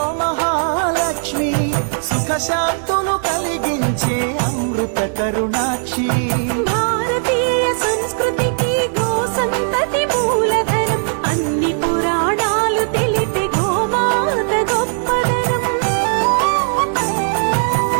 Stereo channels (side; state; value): left; silent; digital silence